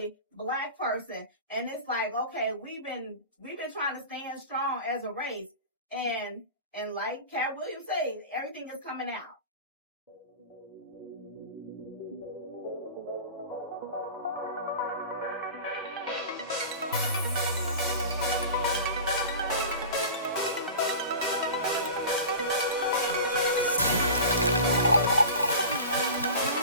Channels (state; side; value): inverted; both; correlation -0.34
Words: black person. And it's like, okay, we've been trying to stand strong as a race. And like Cat Williams said, everything is coming out.